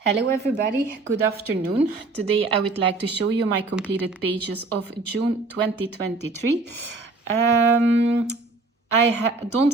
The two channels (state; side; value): quieter; left; 3.5 dB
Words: Hello everybody, good afternoon. Today I would like to show you my completed pages of June 2023. I